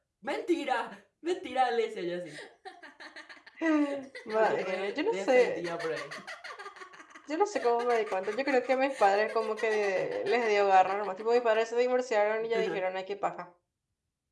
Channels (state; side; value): identical; both; correlation 1.00